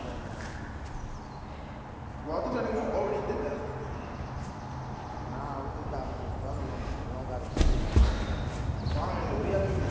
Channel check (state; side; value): identical; both; correlation 1.00